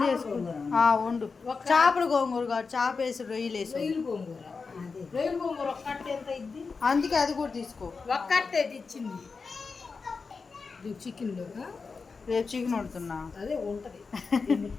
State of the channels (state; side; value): quieter; right; 4.7 dB